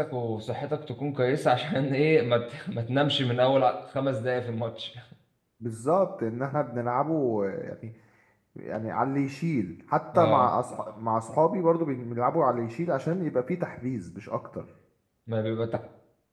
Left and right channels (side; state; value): both; identical; correlation 1.00